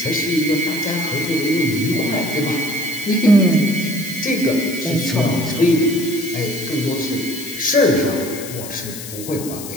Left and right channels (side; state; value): left; noise; hiss, 11 dB below the sound